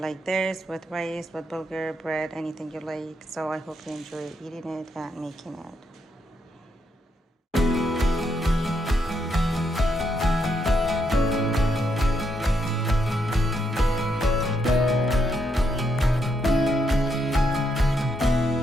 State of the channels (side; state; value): both; normal; correlation 0.78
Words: this with rice, with bulgur, bread, anything you like. So I hope you enjoy eating it and making it.